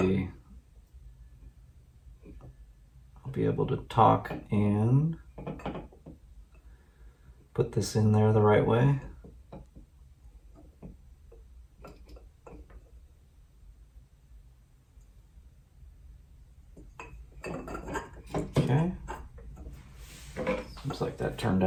I'll be able to talk and put this in there the right way. Okay. Seems like that turned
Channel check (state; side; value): identical; both; correlation 1.00